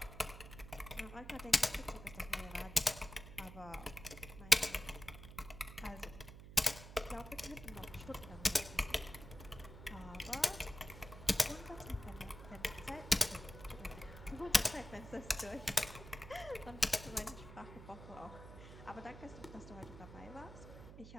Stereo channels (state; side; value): noise; right; hum, 14 dB below the sound